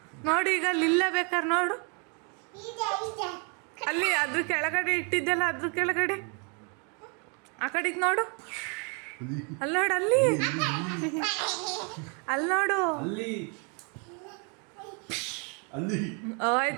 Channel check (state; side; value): quieter; left; 36.5 dB